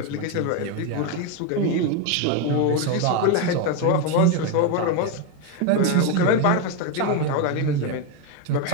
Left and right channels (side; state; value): both; different; correlation 0.02